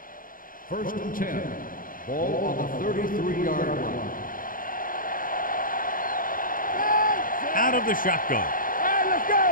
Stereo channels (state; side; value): late; right; 0.40 ms